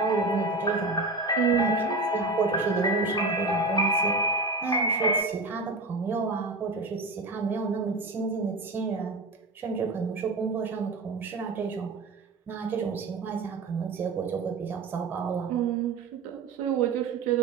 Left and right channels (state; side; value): quieter; left; 3.3 dB